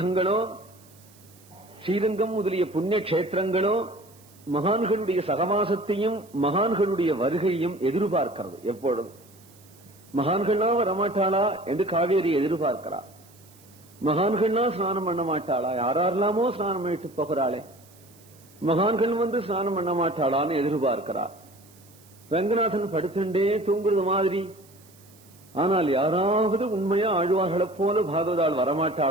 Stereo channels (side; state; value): right; noise; hiss, 27 dB below the sound